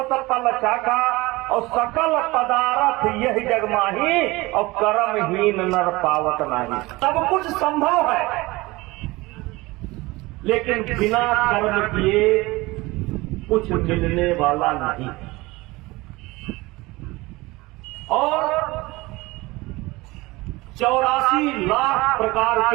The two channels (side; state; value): left; quieter; 21.4 dB